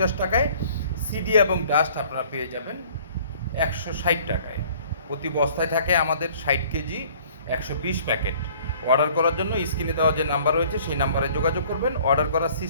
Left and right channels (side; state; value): both; inverted; correlation -0.54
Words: টাকায়, সিডি এবং ডাস্ট আপনারা পেয়ে যাবেন 160 টাকায়। প্রতি বস্তায় থাকে আমাদের 60 কেজি, 120 প্যাকেট। অর্ডার করার জন্য স্ক্রিনে দেওয়া যে নাম্বার রয়েছে সেই নাম্বারে যোগাযোগ করবেন। অর্ডার করার